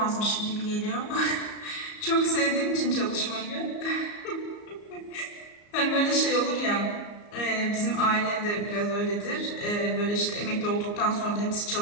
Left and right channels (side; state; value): right; late; 34 ms